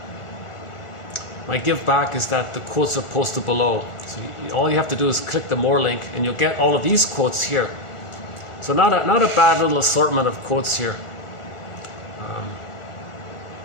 My give back is that the quotes are posted below. So all you have to do is click the more link and you'll get all of these quotes here. So not a bad little assortment of quotes here.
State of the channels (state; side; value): late; right; 1.4 ms